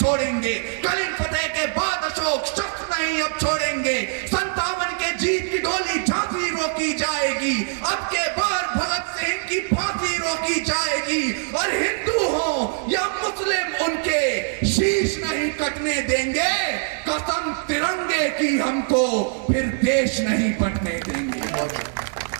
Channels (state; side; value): silent; left; 63 dB below the other